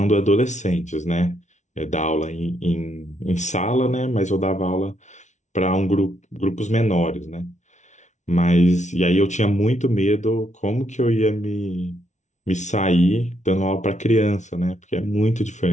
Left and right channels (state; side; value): late; right; 0.34 ms